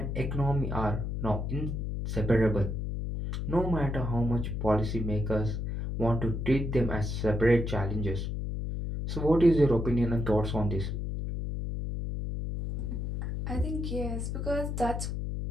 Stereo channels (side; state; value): left; noise; hum, 3 dB below the sound